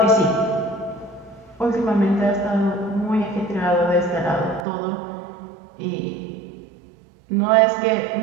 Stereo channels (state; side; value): drops out; left; at 4.7 s